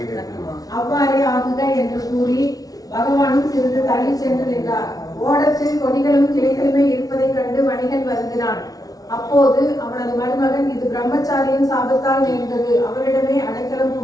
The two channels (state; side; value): late; right; 0.18 ms